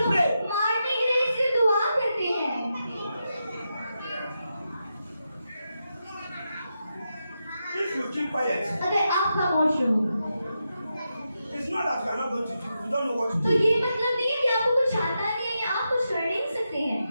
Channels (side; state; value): both; inverted; correlation -0.87